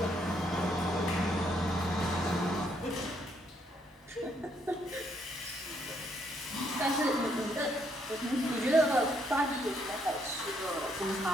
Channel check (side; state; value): both; normal; correlation 0.72